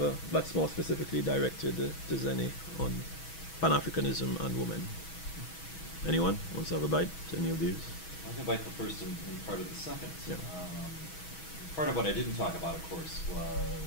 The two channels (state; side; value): late; right; 6.2 ms